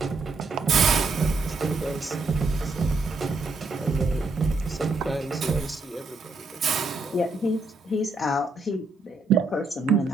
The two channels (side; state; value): left; quieter; 3.4 dB